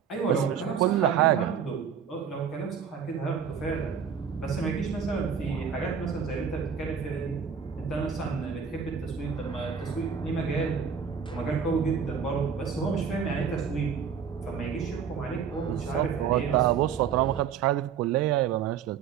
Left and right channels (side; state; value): left; quieter; 7.2 dB